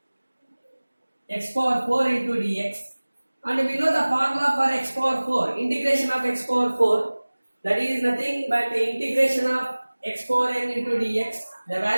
x power 4 into dx. And we know the formula for x power 4, integration of x power 4, that is nothing but the integration of x power n into dx. The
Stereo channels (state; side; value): inverted; both; correlation -1.00